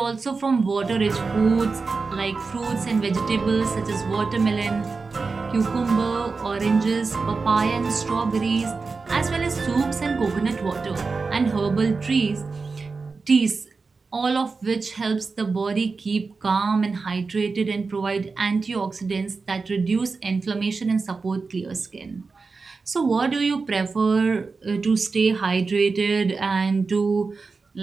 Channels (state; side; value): quieter; left; 4.3 dB